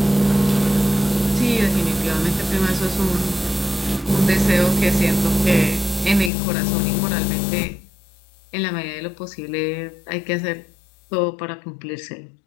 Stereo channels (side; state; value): right; drops out; at 6.3 s